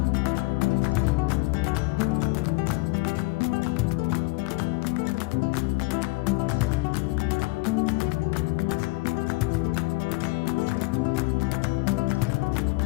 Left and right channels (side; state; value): right; quieter; 23.8 dB